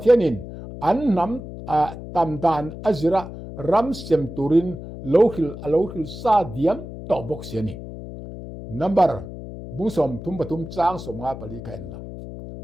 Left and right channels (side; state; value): left; noise; hum, 11 dB below the sound